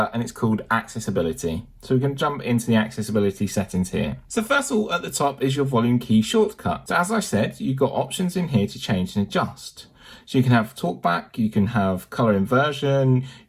and it's called accessibility. So we can jump into the accessibility settings here. So first of all, at the top is your volume key shortcut. So as I said, you've got options in here to change and adjust. So you can have talkback, you can have colour inversion,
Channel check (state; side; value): identical; both; correlation 1.00